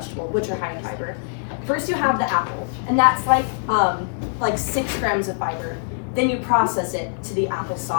which are high in fiber, first you have the apple, and that's like 6 grams of fiber. Then you process it to the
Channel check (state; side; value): silent; right; 61 dB below the other